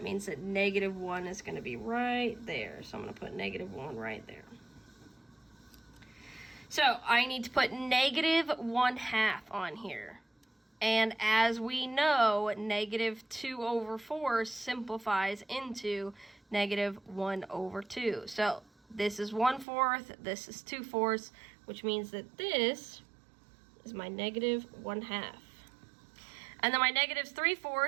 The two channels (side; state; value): left; drops out; at 19.7 s